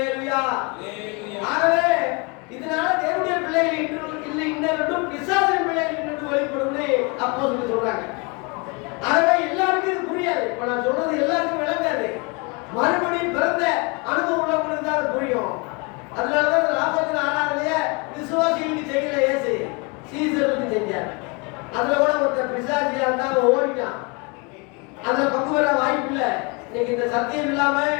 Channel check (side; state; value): right; quieter; 30.1 dB